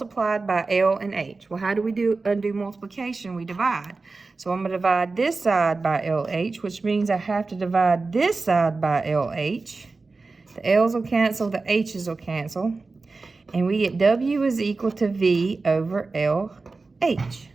by L and H. Well, how do we undo multiplication? We divide. So I'm going to divide this side by LH, which means I have to divide this side by LH. The L's will cancel, the H's will cancel. And we get W is equal to V over LH.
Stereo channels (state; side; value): quieter; left; 3.8 dB